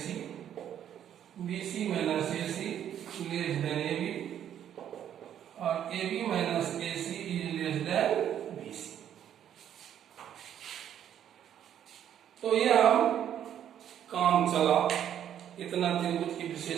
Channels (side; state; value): left; quieter; 10.0 dB